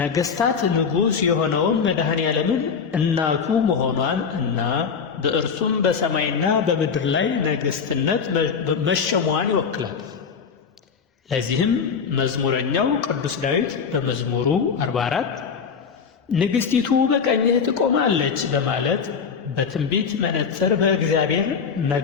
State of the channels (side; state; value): right; quieter; 6.1 dB